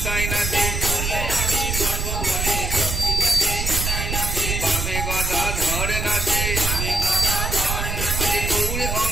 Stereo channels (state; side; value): noise; right; rumble, 2 dB below the sound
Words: নাচে বামে গদা ধরে নাচে গৌর